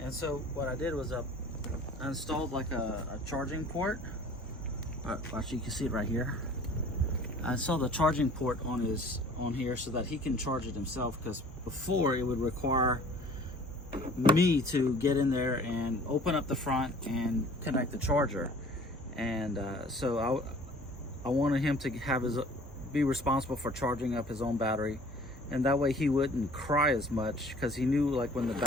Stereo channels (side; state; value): both; normal; correlation 0.50